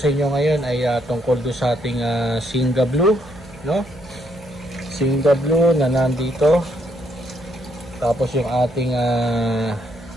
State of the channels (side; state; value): right; noise; hum, 22 dB below the sound